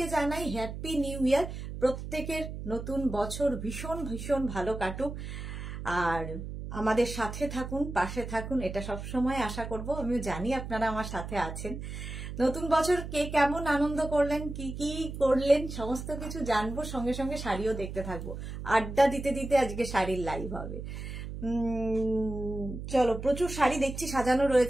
জানাই হ্যাপি নিউ ইয়ার। প্রত্যেকের নতুন বছর ভীষণ ভীষণ ভালো কাটুক, আর আমাদের সাথে থাকুন, পাশে থাকুন, এটা সবসময় আশা করব। আমিও জানি আপনারা আমার সাথে আছেন। নতুন বছর কে কেমন আনন্দ করলেন, কি কি করলেন, সমস্ত কিছু জানবো। সঙ্গে সঙ্গে শাড়িও দেখতে থাকবো। আড্ডা দিতে দিতে আজকে শাড়ির লাইভ হবে। চলো, প্রচুর শাড়ি দেখছি সাজানো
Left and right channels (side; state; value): right; noise; hum, 8 dB below the sound